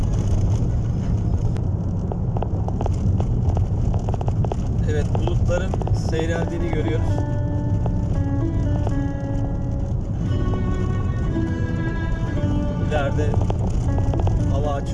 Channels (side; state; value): both; identical; correlation 1.00